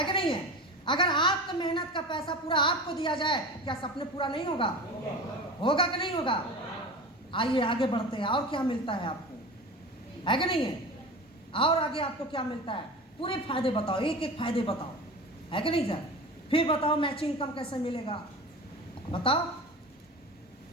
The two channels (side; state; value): both; normal; correlation 0.32